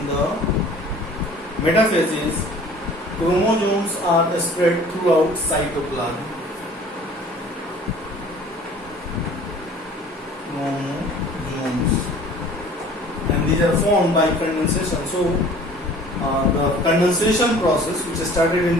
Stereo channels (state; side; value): normal; both; correlation 0.49